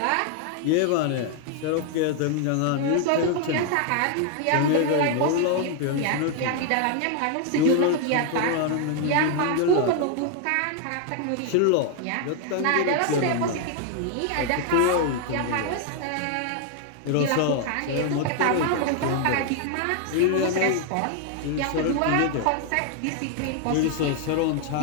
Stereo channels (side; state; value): both; different; correlation 0.00